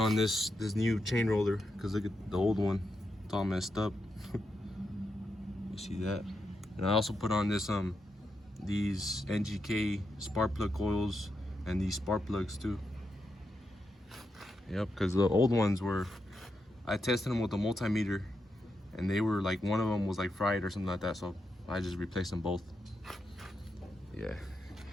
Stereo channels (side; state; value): both; normal; correlation 0.85